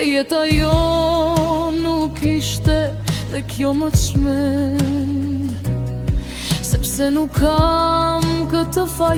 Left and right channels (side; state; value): both; identical; correlation 1.00